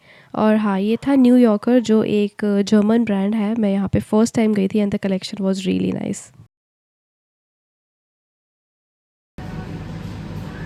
और हाँ, ये था न्यू यॉर्कर जो एक जर्मन ब्रांड है। मैं यहाँ पे फर्स्ट टाइम गई थी and the collection was really nice.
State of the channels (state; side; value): identical; both; correlation 1.00